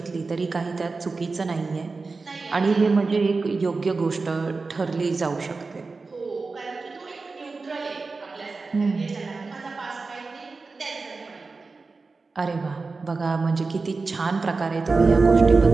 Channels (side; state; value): left; quieter; 4.0 dB